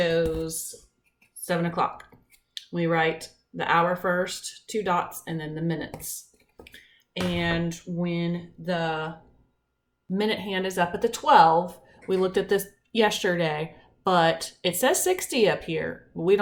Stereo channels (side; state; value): both; identical; correlation 1.00